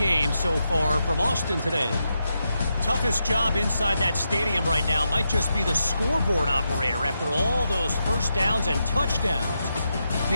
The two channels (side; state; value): both; inverted; correlation -0.85